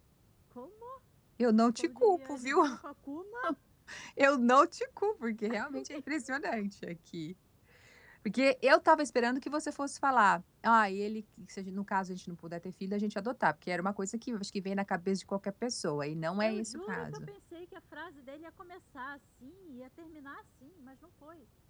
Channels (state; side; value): identical; both; correlation 1.00